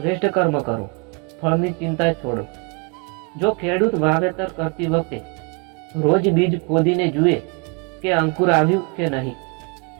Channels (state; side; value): quieter; left; 32.5 dB